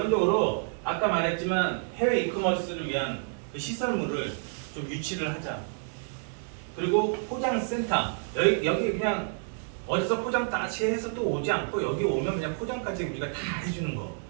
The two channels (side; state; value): left; silent; 59 dB below the other